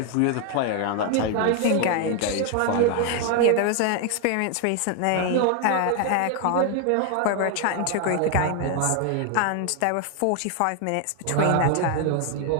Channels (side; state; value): both; different; correlation 0.01